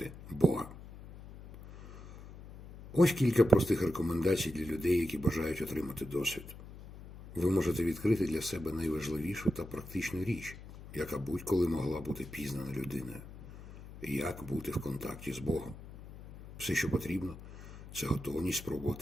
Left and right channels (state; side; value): noise; left; hum, 15 dB below the sound